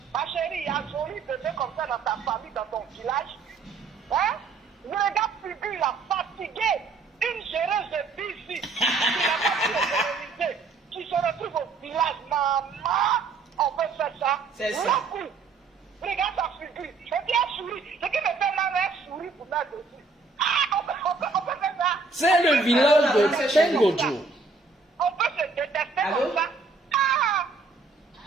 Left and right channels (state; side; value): quieter; left; 4.2 dB